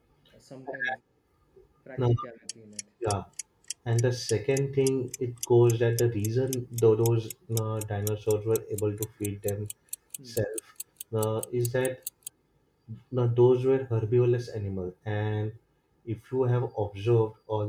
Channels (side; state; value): both; identical; correlation 1.00